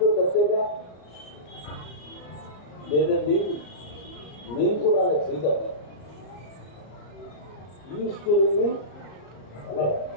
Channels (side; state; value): right; late; 34 ms